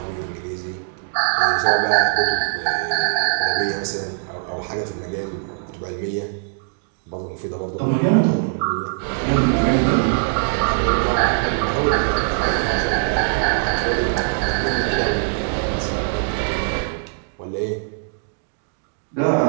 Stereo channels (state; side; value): silent; left; digital silence